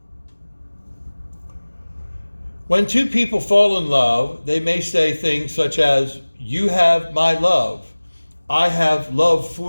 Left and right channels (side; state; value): both; inverted; correlation -1.00